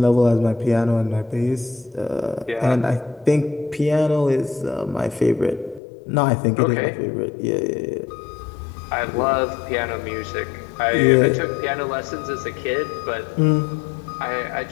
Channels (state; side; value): drops out; right; at 5.8 s